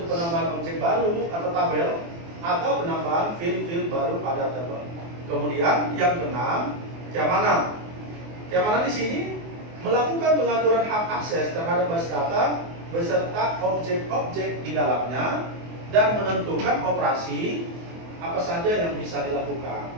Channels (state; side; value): late; left; 24 ms